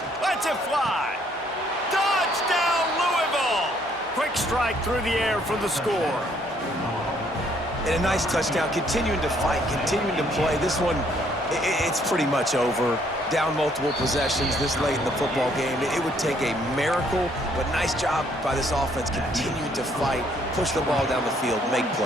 Lets it fly. Touchdown, Louisville! Quick strike through the air for the score. And a nice touchdown, continuing to fight, continuing to play. This one, it's pretty much over. Down multiple possessions this late in the football game. It would take a miracle, but nice job by this offense continuing to fight, push the ball down the field, make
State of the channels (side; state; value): both; normal; correlation 0.66